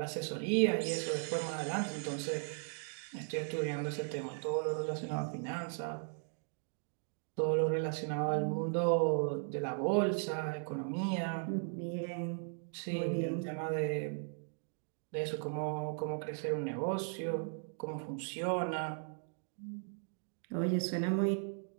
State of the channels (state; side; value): silent; left; 53 dB below the other